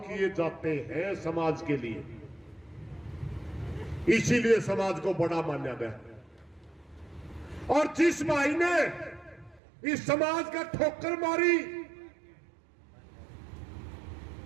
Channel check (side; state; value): left; drops out; at 9.6 s